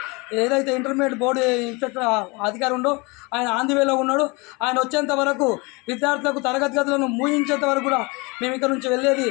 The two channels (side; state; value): right; quieter; 27.4 dB